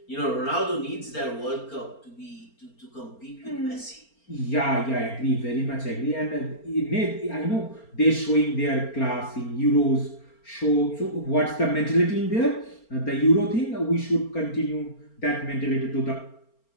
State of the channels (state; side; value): late; right; 4.4 ms